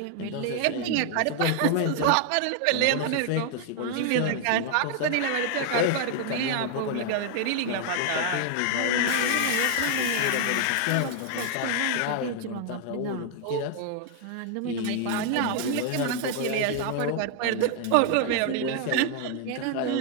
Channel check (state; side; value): different; both; correlation 0.00